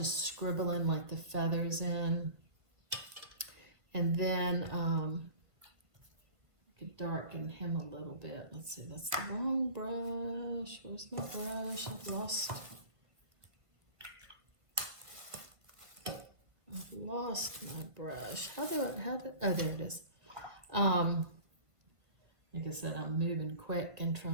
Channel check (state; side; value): late; left; 1.5 ms